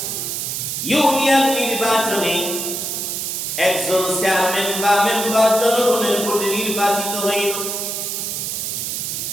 ইউনিয়ন নির্বাচনে একজন চেয়ারম্যান বা মেম্বার জনগণের ভোটে নির্বাচিত হইল।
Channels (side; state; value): right; noise; hiss, 3 dB below the sound